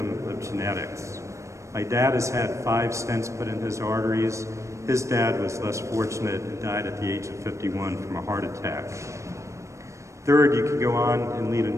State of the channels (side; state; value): left; late; 0.15 ms